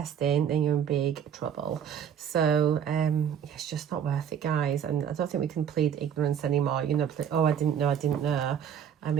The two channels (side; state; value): left; quieter; 8.6 dB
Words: then you're in big trouble. So it's just not worth it, guys. And I don't think we can plead ignorance anymore. You know, oh, I didn't know. I